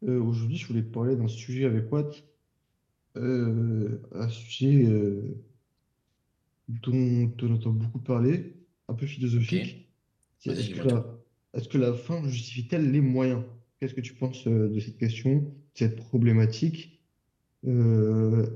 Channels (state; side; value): identical; both; correlation 1.00